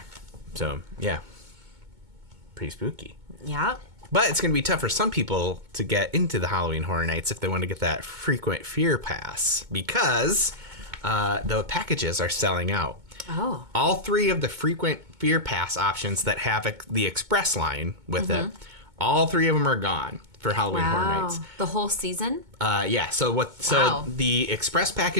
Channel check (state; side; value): late; left; 2.2 ms